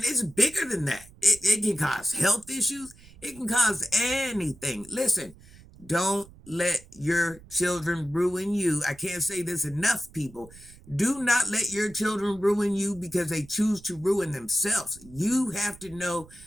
it's bigger than that. It can cause health issues. It can cause anything. Listen, don't let your children ruin you. I can't say this enough, people. Do not let your children ruin you because they choose to ruin themselves. You have to know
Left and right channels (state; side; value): noise; right; rumble, 22 dB below the sound